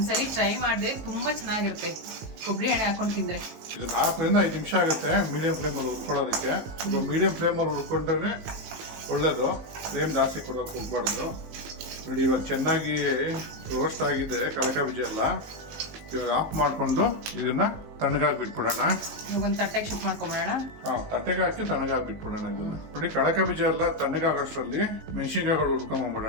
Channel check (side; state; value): left; late; 19 ms